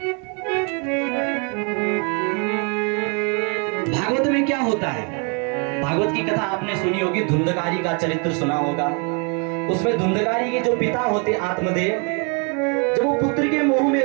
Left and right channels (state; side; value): quieter; left; 35.9 dB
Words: भागवत में क्या होता है? भागवत की कथा आपने सुनी होगी, धुंधकारी का चरित्र सुना होगा। उसमें धुंधकारी के जो पिता होते आत्मदेव, जब वो पुत्र के मोह में